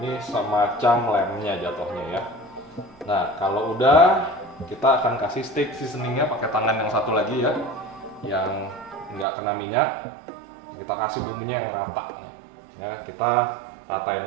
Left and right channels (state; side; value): drops out; left; at 9.2 s